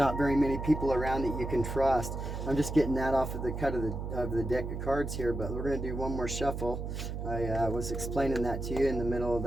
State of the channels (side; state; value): right; noise; hum, 5 dB below the sound